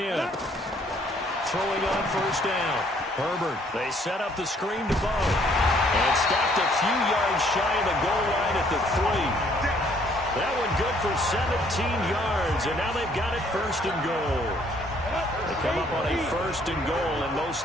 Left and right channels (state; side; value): normal; both; correlation 0.64